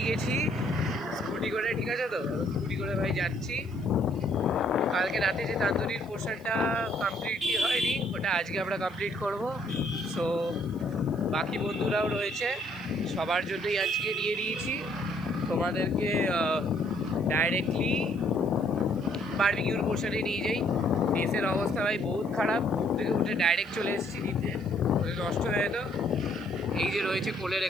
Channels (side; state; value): left; noise; hiss, 29 dB below the sound